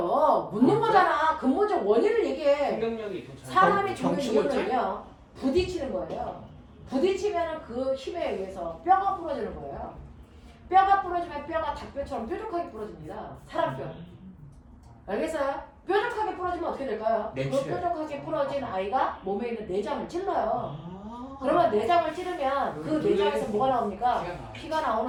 묻는 거잖아. 근본적 원인을 얘기해. 충격력이 더 잘. 사람이 죽는 정치물질? 이유는요. 부딪히는 거예요. 부딪히면 그 힘에 의해서 뼈가 부러지는 거예요. 뼈가 부러지면 뼈가 닭뼈처럼 뾰족하게 부러집니다. 사람 뼈. 알겠어요? 뾰족하게 부러지면 어떻게 될까요? 그 내추럴. 뾰족하게 부러진 아이가 몸에 있는 내장을 찔러요. 그러면 내장을 찌르면 그 내장에서 뭐가 나옵니까? 피가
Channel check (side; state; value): both; identical; correlation 1.00